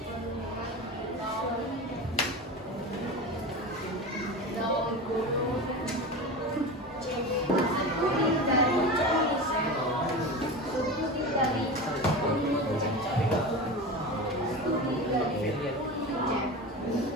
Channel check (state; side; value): normal; both; correlation 0.27